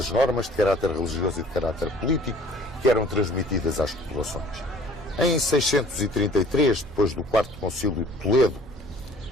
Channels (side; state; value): right; noise; hum, 22 dB below the sound